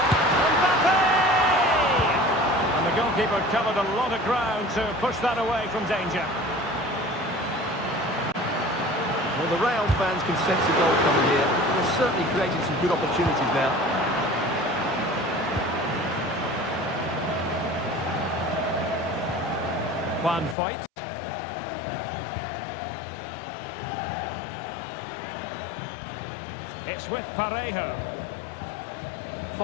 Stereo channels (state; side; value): drops out; right; at 20.6 s